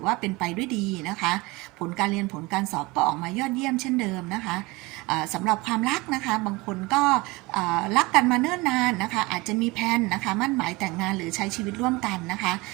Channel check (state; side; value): quieter; left; 23.0 dB